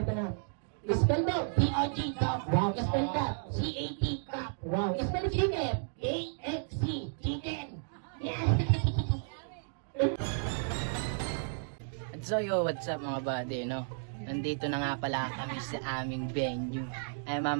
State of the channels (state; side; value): silent; left; digital silence